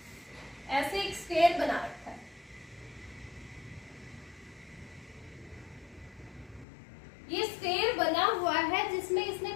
ऐसे एक स्क्वायर बना रखा है, ये स्क्वायर बना हुआ है, जिसमें इसने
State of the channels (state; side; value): drops out; right; at 6.7 s